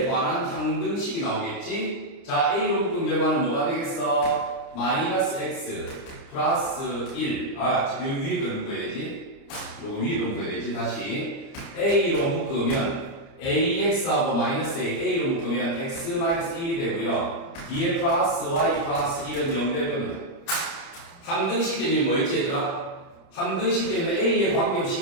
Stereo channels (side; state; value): right; late; 30 ms